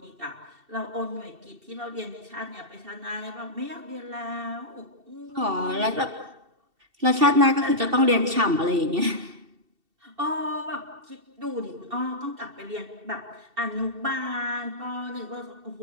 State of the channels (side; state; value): left; late; 2.7 ms